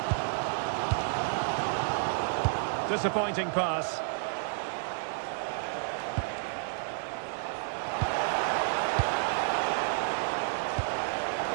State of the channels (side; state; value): left; silent; digital silence